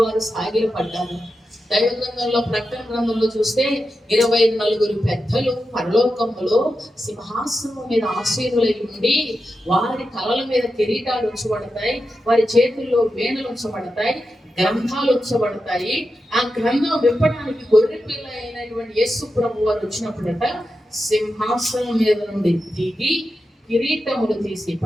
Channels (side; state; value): both; normal; correlation 0.89